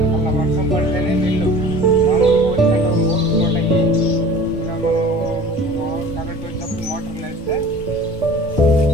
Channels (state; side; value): normal; both; correlation 0.44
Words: అలా వర్షం పడితేనే నీళ్ళు మామూలు పోయి కరెంట్ వచ్చినప్పుడు మోటార్లు వేస్తే